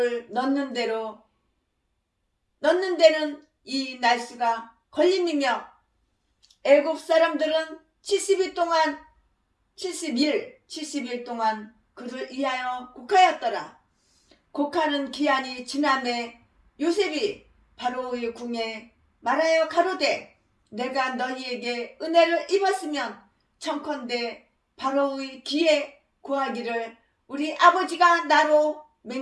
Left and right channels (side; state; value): both; identical; correlation 1.00